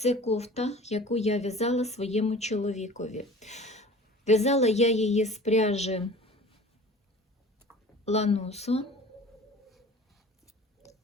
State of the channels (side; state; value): both; normal; correlation 0.42